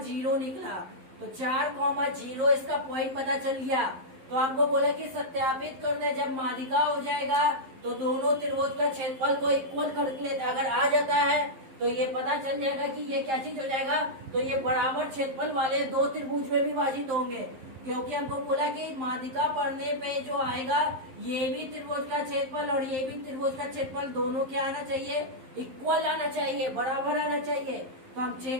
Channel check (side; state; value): left; late; 11 ms